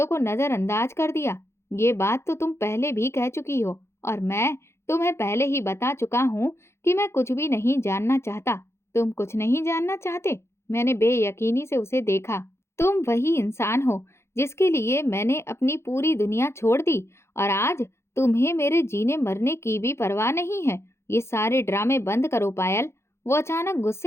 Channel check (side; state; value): right; late; 0.13 ms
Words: को नजरअंदाज कर दिया। ये बात तो तुम पहले भी कह चुकी हो, और मैं तुम्हें पहले ही बता चुका हूँ कि मैं कुछ भी नहीं जानना चाहता। तुम कुछ नहीं जानना चाहते? मैंने बेयकीनी से उसे देखा। तुम वही इंसान हो जिसके लिए मैंने अपनी पूरी दुनिया छोड़ दी, और आज तुम्हें मेरे जीने मरने की भी परवाह नहीं है। ये सारे ड्रामे बंद करो पायल। वो अचानक